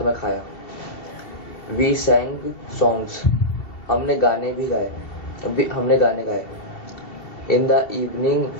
में खाया। वी सैंग सॉन्ग्स, हमने गाने गाए। In the evening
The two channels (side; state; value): right; late; 2.7 ms